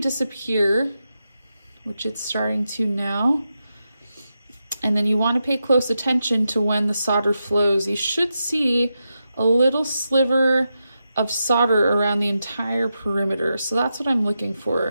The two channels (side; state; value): both; inverted; correlation -0.88